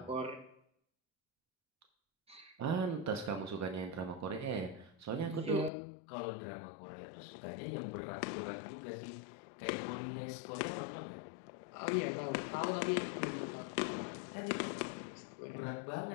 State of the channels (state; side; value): drops out; right; at 5.7 s